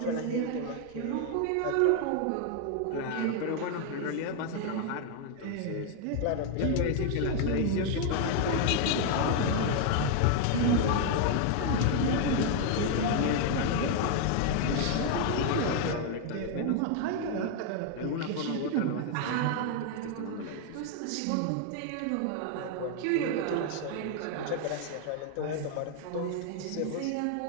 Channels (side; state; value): both; different; correlation 0.00